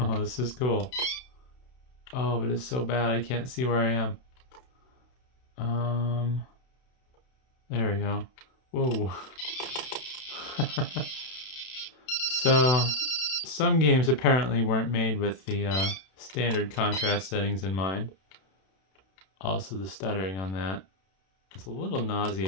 this is cool. Oh, but it's so bad I can't see where I am. There we go. Whoa. So, some games apparently weren't made with the standard contrast settings in mind. Also, the stuttering on that. It's a little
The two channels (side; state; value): right; late; 31 ms